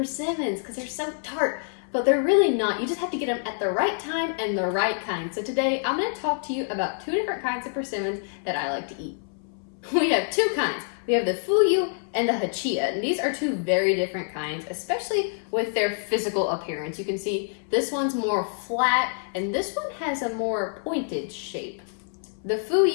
because they're so tart. But they're really not. You just have to get them at the right time and the right kind. So today I'm going to talk to you about two different kinds of persimmons that I like to eat. We have two kinds. We have the fuyu and the hachia, and these are two very different kinds, especially with their physical appearance. You can see this one's more flat and this one has a more pointed shape. The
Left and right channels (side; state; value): right; silent; 61 dB below the other